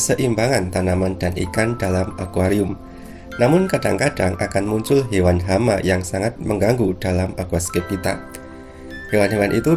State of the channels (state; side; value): identical; both; correlation 1.00